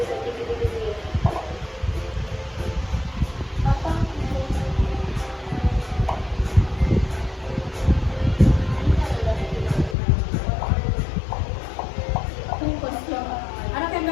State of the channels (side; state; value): right; drops out; at 10.0 s